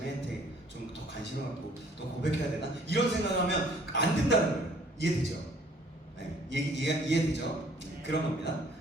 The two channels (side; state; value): both; normal; correlation 0.58